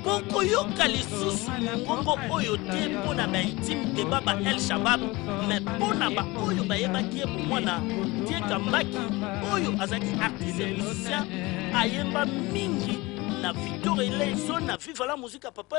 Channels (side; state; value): right; quieter; 22.4 dB